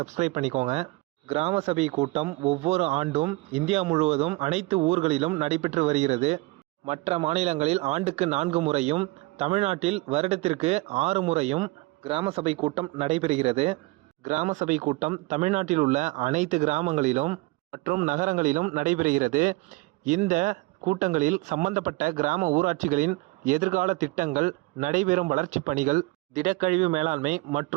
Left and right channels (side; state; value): left; quieter; 23.1 dB